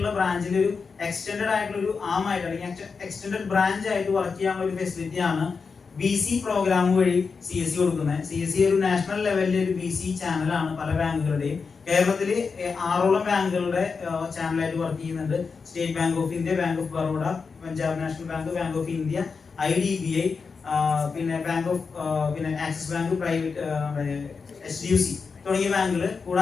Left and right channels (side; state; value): right; quieter; 5.1 dB